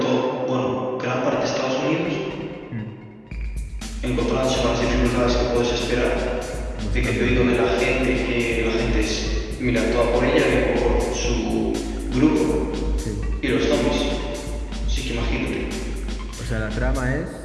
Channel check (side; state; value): both; identical; correlation 1.00